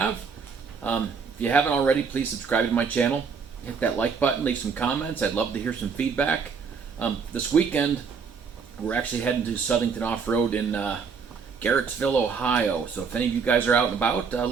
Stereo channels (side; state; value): left; quieter; 5.7 dB